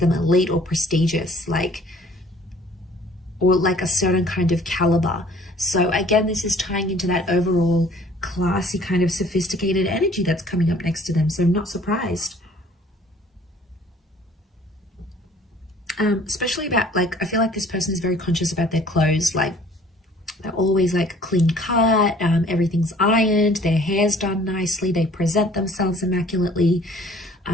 elite or prestigious, or like a certain kind of caliber. So again, this is tying into that overall classy kind of sophisticated energy that's coming up next to them. So I'm not surprised. Especially about, like, I feel like this person is very conscious about their clothes. Like, they're always like clean cut, everything's ironed, their hair's done nicely, they present themselves immaculately.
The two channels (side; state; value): both; normal; correlation 0.54